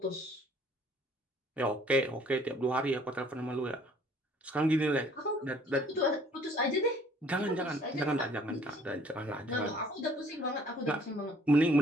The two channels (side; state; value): both; normal; correlation 0.58